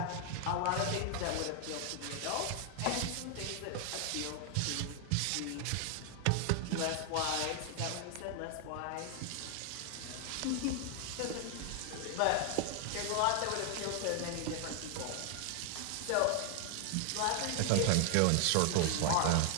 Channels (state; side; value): different; both; correlation 0.00